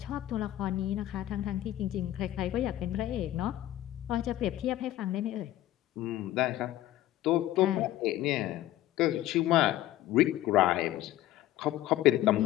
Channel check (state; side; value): quieter; right; 14.3 dB